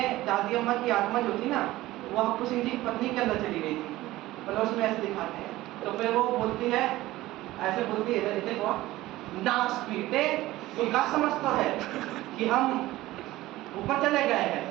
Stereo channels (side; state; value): left; quieter; 17.1 dB